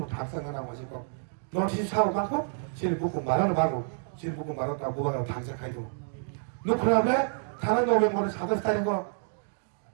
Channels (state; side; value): silent; left; digital silence